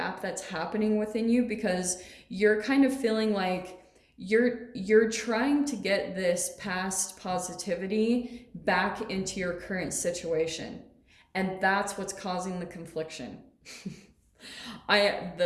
that's happening within you because you're kind of feeling like you're trying to get this past positivity back into your current situation. And that's what's causing the confliction.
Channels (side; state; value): both; identical; correlation 1.00